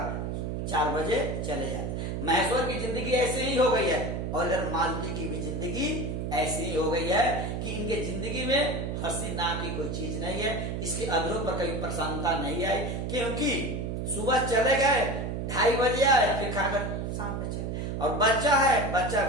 4 बजे चले जाते हैं। महेश्वर की जिंदगी ऐसे ही हो गई है और इधर मालती की भी जिंदगी ऐसी ही हो गई है कि इनके जिंदगी में हंसी नाम की कोई चीज नहीं है, इसके अधरों पर कभी प्रसन्नता नहीं आई, क्योंकि सुबह चले गए, 2:30 बजे आए, फिर खाकर शाम में चले। और बच्चा है, बच्चा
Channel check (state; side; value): noise; right; hum, 3 dB below the sound